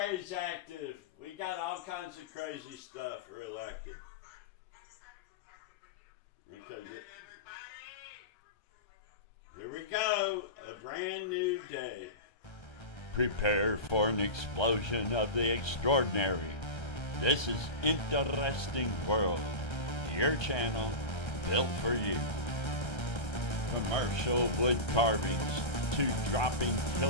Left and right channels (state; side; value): late; right; 1.3 ms